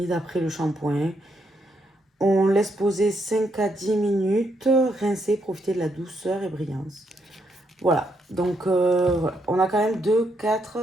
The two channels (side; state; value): both; normal; correlation 0.77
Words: après le shampoing. On laisse poser 5 à 10 minutes, rincer, profiter de la douceur et brillance. Voilà, donc voilà. On a quand même 2,